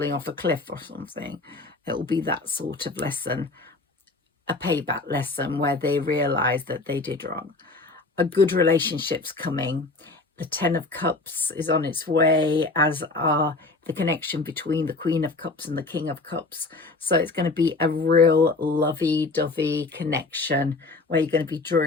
off a cliff or something. It will be that sort of lesson, a payback lesson where they realize that they did wrong. A good relationship's coming. The 10 of Cups is on its way, as are the connection between the Queen of Cups and the King of Cups. So it's going to be a real lovey-dovey connection where you're going to be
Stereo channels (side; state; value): right; quieter; 3.4 dB